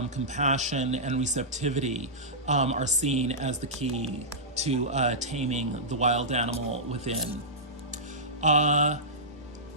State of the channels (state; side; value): normal; both; correlation -0.15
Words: compassion, and receptivity are seen as the key to taming the wild animal within.